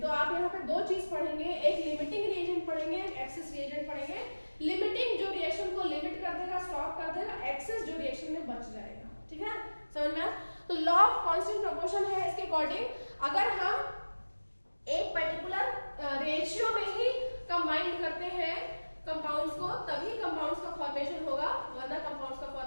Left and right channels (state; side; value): inverted; both; correlation -1.00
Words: तो आप यहाँ पे 2 चीज पढ़ेंगे, एक लिमिटिंग रिएजेंट पढ़ेंगे, एक एक्सेस रिएजेंट पढ़ेंगे। लिमिटिंग जो रिएक्शन को लिमिट कर देगा, स्टॉप कर देगा, एक्सेस जो रिएक्शन में बच जाएगा। ठीक है, समझ में आया? तो लॉ ऑफ कांस्टेंट प्रोपोर्शन है इसके अकॉर्डिंग, अगर हम एक पर्टिकुलर रेशियो में ही कंबाइन करते हैं कंपाउंड्स को तभी कंपाउंड्स का फॉर्मेशन होगा, वरना कंपाउंड्स का